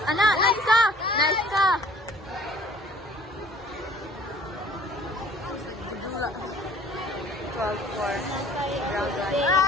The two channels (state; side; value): normal; both; correlation 0.53